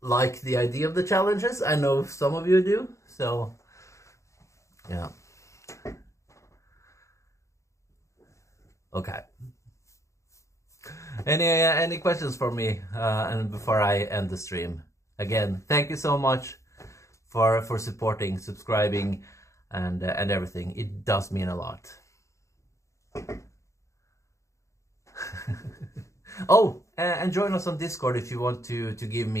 the idea of the challenges. I know some of you do, so yeah. Okay. Any questions for me and before I end the stream? Again, thank you so much for supporting, subscribing, and everything. It does mean a lot. Oh, and join us on Discord if you want to give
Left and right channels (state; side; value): late; right; 0.15 ms